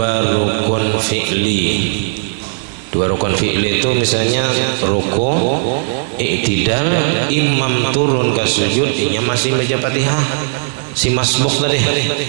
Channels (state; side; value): silent; left; 69 dB below the other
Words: rukun fi'li. Dua rukun fi'li itu misalnya ruku, i'tidal, imam turun ke sujud, inya masih baca Fatihah si masbuk tadi,